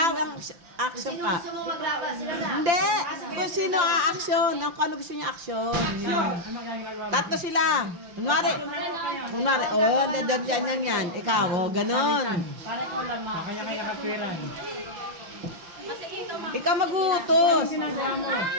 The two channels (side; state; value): left; late; 5.9 ms